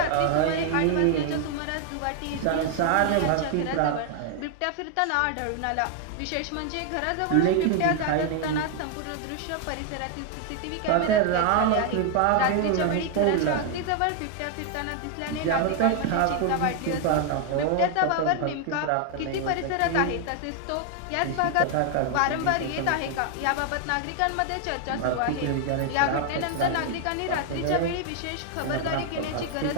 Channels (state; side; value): different; both; correlation 0.00